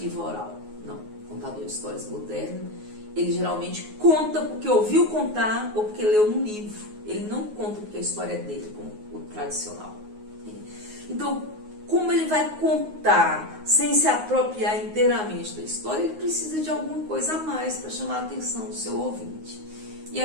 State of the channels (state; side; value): late; left; 9.5 ms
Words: oral. Não, o contador de histórias moderno, ele geralmente conta porque ouviu contar ou porque leu num livro. Ele não conta porque a história é dele, como o tradicional. Então, como ele vai contar sem se apropriar inteiramente da história, ele precisa de alguma coisa a mais para chamar a atenção do seu ouvinte. E